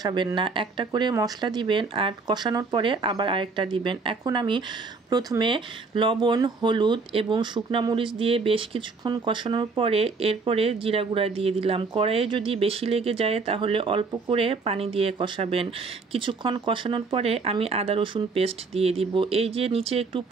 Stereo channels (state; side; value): quieter; left; 4.4 dB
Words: না, একটা করে মশলা দিবেন আর কষানোর পরে আবার আরেকটা দিবেন। এখন আমি প্রথমে লবণ, হলুদ এবং শুকনা মরিচ দিয়ে বেশ কিছুক্ষণ কষানোর পরে এরপরে জিরা গুঁড়া দিয়ে দিলাম। কড়াইয়ে যদি বেশি লেগে যায় তাহলে অল্প করে পানি দিয়ে কষাবেন। কিছুক্ষণ কষানোর পরে আমি আদা রসুন পেস্ট দিয়ে দিব। এই যে নিচে একটু